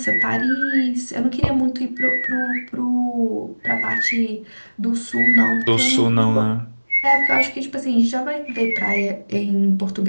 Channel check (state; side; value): inverted; both; correlation -1.00